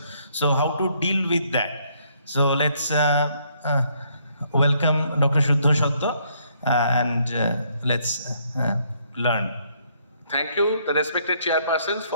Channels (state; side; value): inverted; both; correlation -0.69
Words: So how to deal with that? So let's welcome Dr. Shuddha Shatto and let's learn. Thank you, the respected chairpersons,